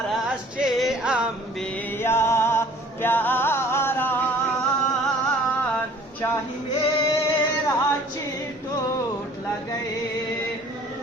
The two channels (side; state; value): both; normal; correlation 0.53